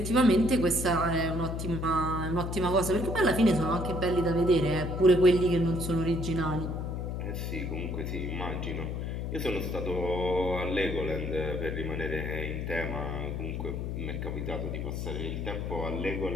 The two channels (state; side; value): noise; left; hum, 3 dB below the sound